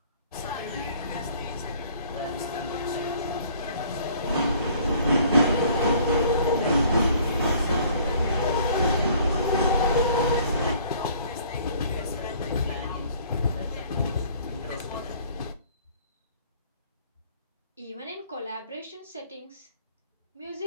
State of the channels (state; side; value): inverted; both; correlation -0.55